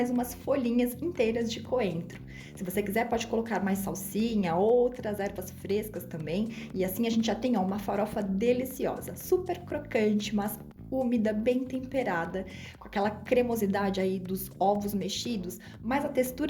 umas folhinhas inteiras de coentro. Se você quiser, pode colocar mais salsinha, outras ervas frescas também. E assim a gente já tem uma farofa deliciosa, super crocante, mas úmida, bem temperada, com aquela cremosidade aí dos ovos mexidos, mas a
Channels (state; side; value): identical; both; correlation 1.00